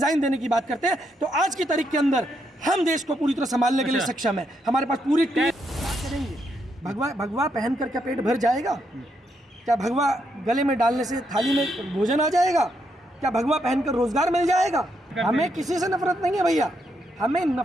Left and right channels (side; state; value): both; normal; correlation 0.78